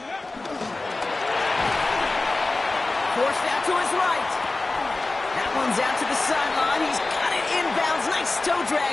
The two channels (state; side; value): quieter; right; 3.2 dB